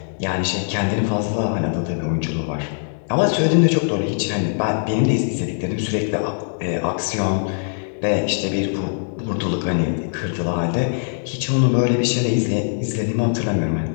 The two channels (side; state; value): right; silent; digital silence